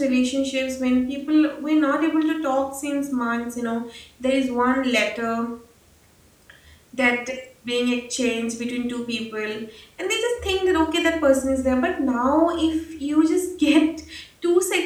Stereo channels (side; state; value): both; identical; correlation 1.00